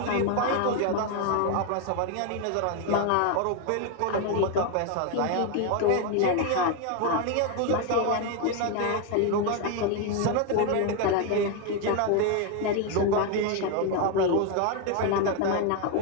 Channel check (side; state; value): both; different; correlation 0.01